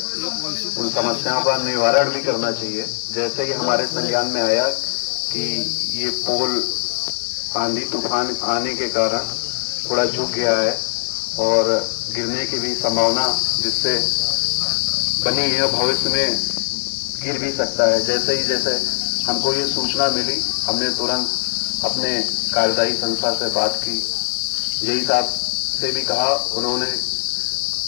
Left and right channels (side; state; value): right; silent; 61 dB below the other